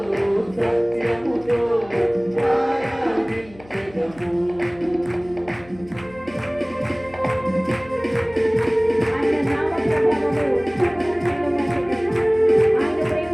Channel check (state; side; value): noise; left; hum, 23 dB below the sound